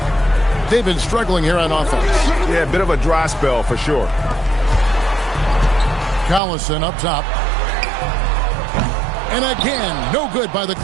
They've been struggling here on offense. Yeah, a bit of a dry spell for sure. Collison up top. And again, no good by the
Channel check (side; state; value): left; drops out; at 6.4 s